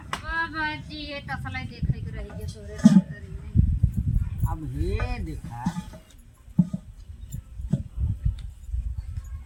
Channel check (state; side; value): identical; both; correlation 1.00